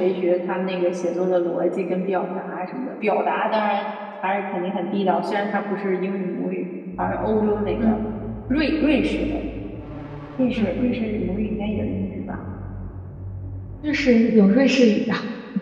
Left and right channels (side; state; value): both; identical; correlation 1.00